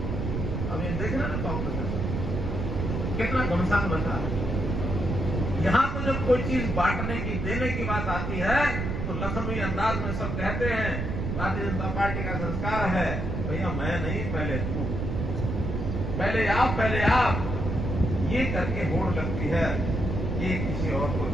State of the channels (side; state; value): right; noise; rumble, 2 dB below the sound